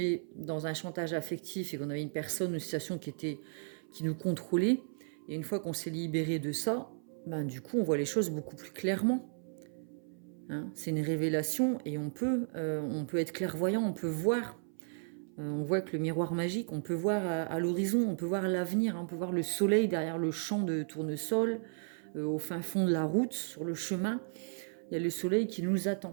dans un chantage affectif et qu'on avait une personne, une situation qui nous contrôlait. Et une fois qu'on s'est libéré de ça, ben, du coup, on voit les choses beaucoup plus clairement. Hein, c'est une révélation et on peut être clairvoyant, on peut voir. On voit que le miroir magique, on peut voir à l'horizon, on peut voir l'avenir, hein, on peut voir le soleil derrière le champ de tournesol, au fin fond de la route, sur le chemin. Il y a le soleil qui nous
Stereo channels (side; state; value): left; silent; 55 dB below the other